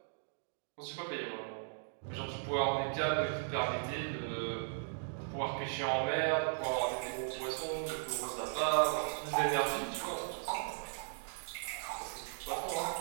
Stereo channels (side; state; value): left; silent; digital silence